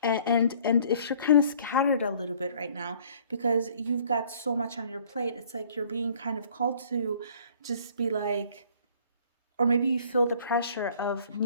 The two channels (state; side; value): inverted; both; correlation -0.56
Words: And if you're kind of scattered a little bit right now because you've got so much on your plate, it's like you're being kind of called to just be like, or maybe you feel the pressure of